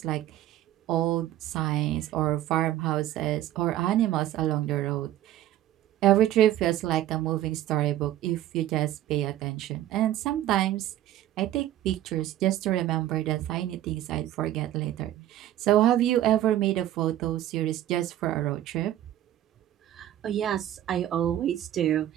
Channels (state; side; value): quieter; left; 12.9 dB